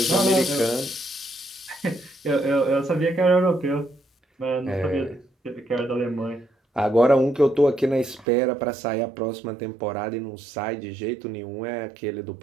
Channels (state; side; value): drops out; left; at 8.2 s